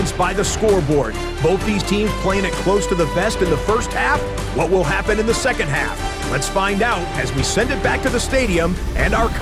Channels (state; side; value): identical; both; correlation 1.00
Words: by the scoreboard. Both these teams playing it close to the vest in the first half. What will happen in the second half? Let's find out as we send it back to the stadium and our